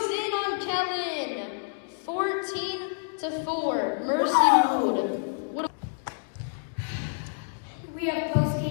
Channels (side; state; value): right; silent; 59 dB below the other